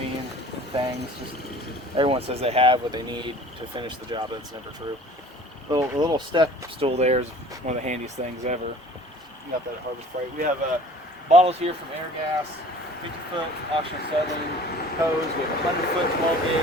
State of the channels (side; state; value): both; normal; correlation 0.47